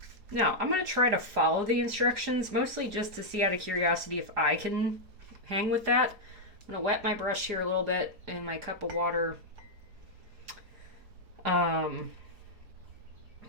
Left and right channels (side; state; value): left; late; 4.4 ms